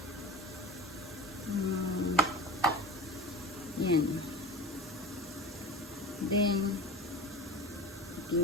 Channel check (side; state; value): both; normal; correlation 0.32